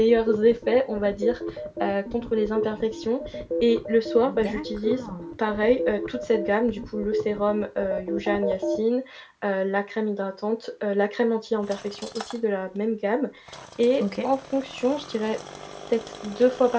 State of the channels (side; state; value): both; identical; correlation 1.00